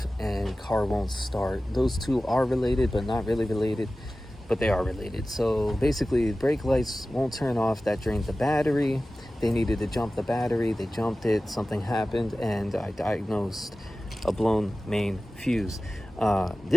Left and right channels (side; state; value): both; normal; correlation 0.96